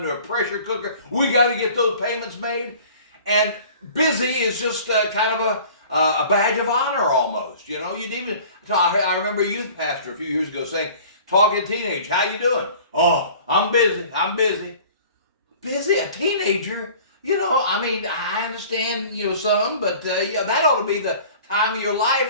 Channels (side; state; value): both; inverted; correlation -0.46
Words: a pressure cooker. We got to get those payments made. And busy is just kind of a badge of honor almost. You know, you'd even, I remember a youth pastor a few years ago saying, talking teenage, "How you doing?" "Oh, I'm busy. Busy? A teenager? You know, I mean, I understand, you know, some, but yeah, that ought to be the time of your